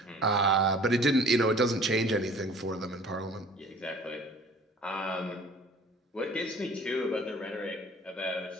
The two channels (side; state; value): both; normal; correlation 0.49